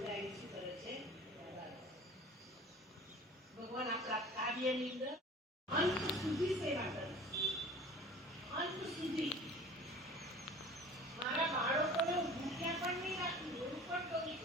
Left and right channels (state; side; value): normal; both; correlation 0.43